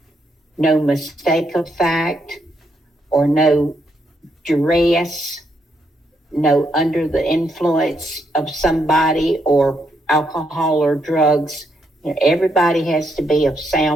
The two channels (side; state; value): both; normal; correlation 0.77